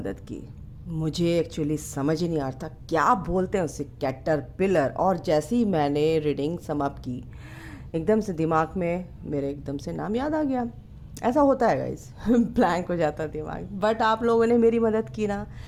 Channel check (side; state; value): both; identical; correlation 1.00